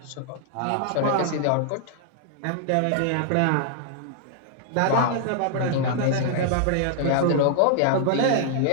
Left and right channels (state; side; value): different; both; correlation -0.01